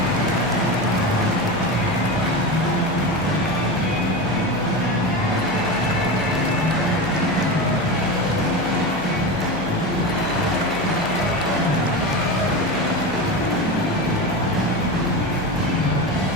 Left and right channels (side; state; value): left; noise; hum, 15 dB below the sound